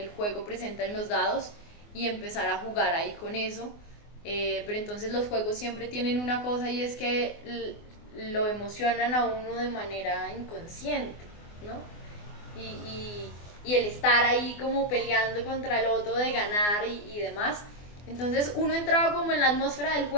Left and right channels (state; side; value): late; right; 24 ms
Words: juego presenta en los dados y empezar a jugar ahí con eso. Pero entonces los juegos siempre tienen una cosa y es que lo emocionan a uno de manera inconsciente, ¿no? Y el estar ahí como peleando contra el otro de ganar y demás. Entonces uno entraba como en la atmósfera del